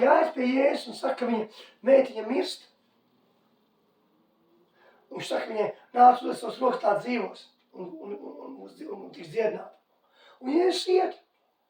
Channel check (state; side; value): identical; both; correlation 1.00